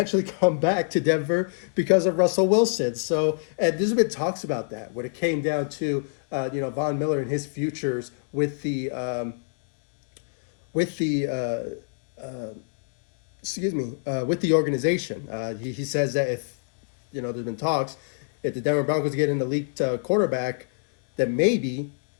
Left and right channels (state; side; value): silent; right; digital silence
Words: come back to Denver because of Russell Wilson. So, and there's been talks about that when it came down to Von Miller and his futures with the organization. He says that if there's been talks, if the Denver Broncos get an elite quarterback, that maybe